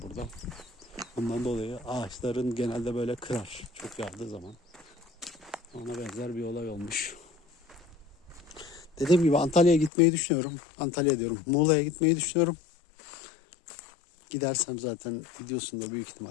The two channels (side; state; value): right; drops out; at 9.9 s